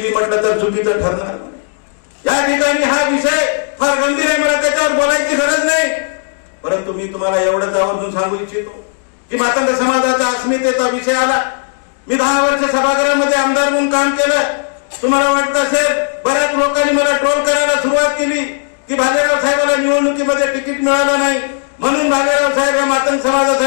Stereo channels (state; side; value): silent; right; 64 dB below the other